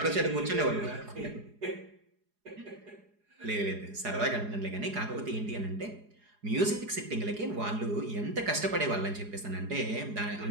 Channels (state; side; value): late; left; 4.8 ms